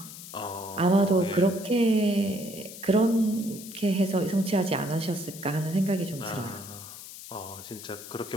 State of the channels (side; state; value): left; noise; hiss, 14 dB below the sound